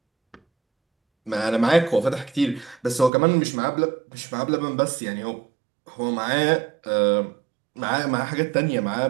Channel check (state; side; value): drops out; left; at 3.1 s